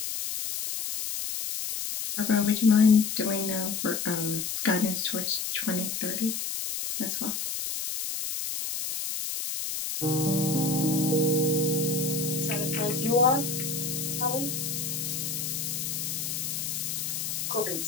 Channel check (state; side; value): noise; left; hiss, 3 dB below the sound